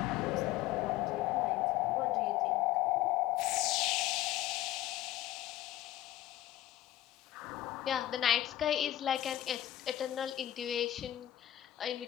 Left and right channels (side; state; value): right; quieter; 13.7 dB